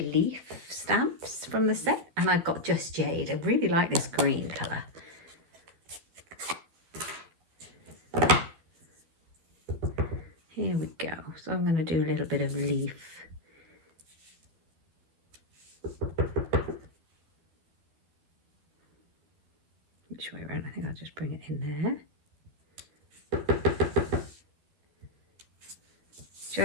stamps from the set. And I've got Just Jade. I really like this green colour. Here we go. So I'm going to do a little bit of leaf. Which way around? I think I'll just bring it in there.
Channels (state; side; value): late; left; 12 ms